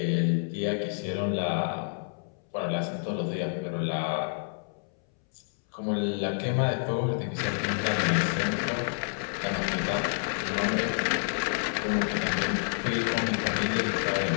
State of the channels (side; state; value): right; silent; 59 dB below the other